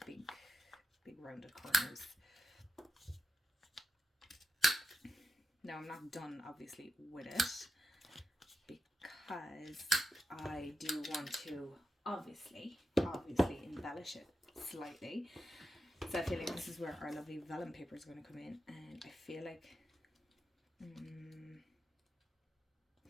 big rounded corners. Now I'm not done obviously with it because I do want to obviously embellish it slightly. So I feel like this is where our lovely vellum paper is going to come in, and I feel like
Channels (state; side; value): normal; both; correlation 0.88